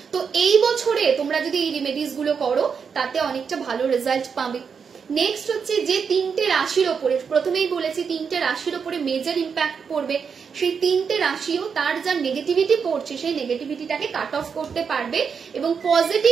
তো এই বছরে তোমরা যদি এই রেমেডিস গুলো করো তাতে অনেকটা ভালো রেজাল্ট পাবে। নেক্সট হচ্ছে যে 3টে রাশির ওপরে, প্রথমেই বলেছি 3টে রাশির ওপরে মেজর ইম্প্যাক্ট পড়বে, সেই 3টে রাশিও তার যা নেগেটিভিটি পড়ছে সেই নেগেটিভিটিটাকে কাট অফ করতে পারবে এবং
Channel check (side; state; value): left; quieter; 6.3 dB